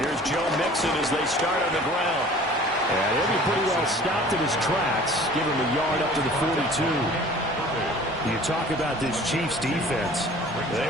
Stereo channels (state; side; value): normal; both; correlation 0.47